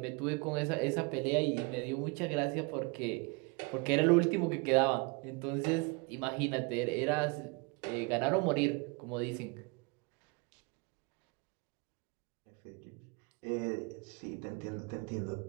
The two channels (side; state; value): left; quieter; 29.8 dB